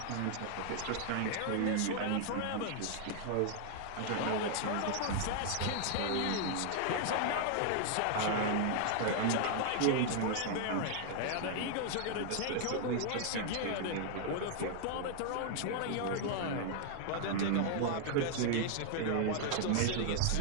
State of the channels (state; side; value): different; both; correlation 0.00